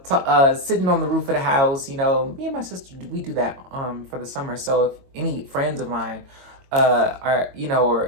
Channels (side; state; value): left; late; 22 ms